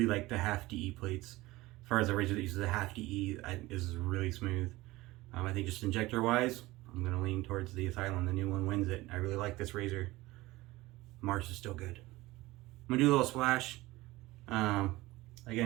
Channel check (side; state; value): left; quieter; 19.4 dB